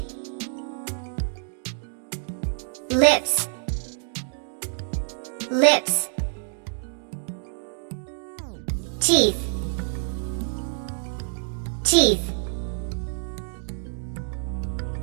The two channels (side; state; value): left; silent; digital silence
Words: Lips, lips. Teeth, teeth.